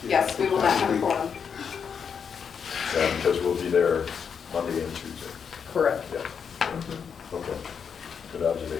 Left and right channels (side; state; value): right; quieter; 6.8 dB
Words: Yes, we will not have a quorum. Yeah, because we'll be there Monday and Tuesday. Correct. Yeah, Mhm. okay. Good